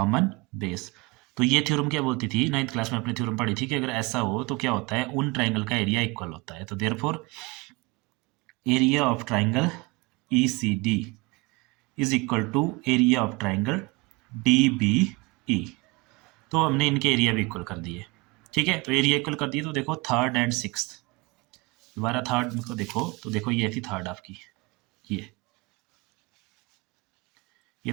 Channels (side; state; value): left; quieter; 24.8 dB